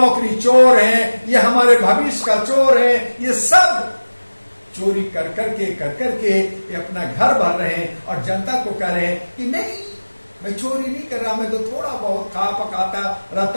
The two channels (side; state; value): both; inverted; correlation -1.00